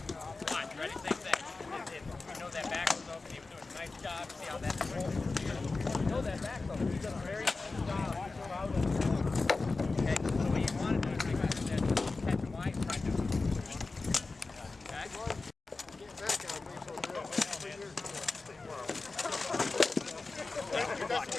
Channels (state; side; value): quieter; right; 3.7 dB